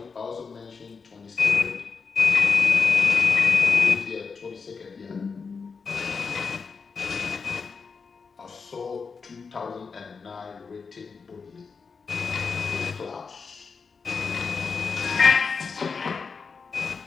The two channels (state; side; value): quieter; right; 5.2 dB